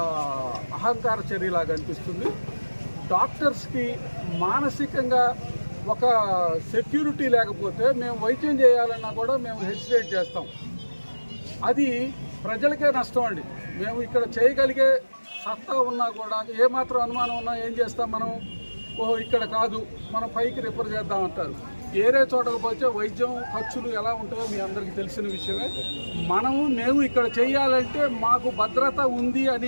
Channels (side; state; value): both; inverted; correlation -1.00